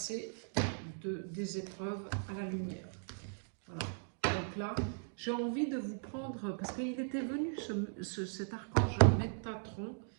des épreuves à la lumière. Voilà. Donc là, j'ai envie de vous prendre, parce qu'il était venu cet archange Métatron.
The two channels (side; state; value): left; silent; digital silence